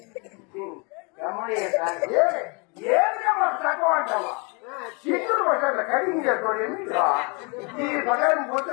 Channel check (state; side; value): quieter; right; 31.9 dB